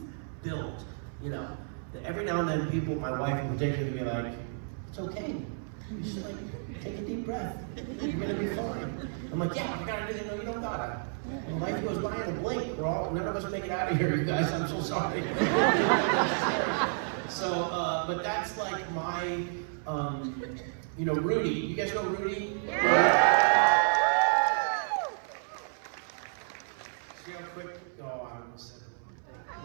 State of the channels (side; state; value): left; silent; 57 dB below the other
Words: build. Every now and then people, my wife in particular, will be like, it's okay. You just take a deep breath. You're gonna be fine. I'm like, yeah, I gotta do that. No, you don't gotta. And life goes by in a blink. None of us make it out of here, you guys. I'm so sorry. So, but that's like my, Rudy. You guys know Rudy? Yeah. See how quick? Oh, I almost said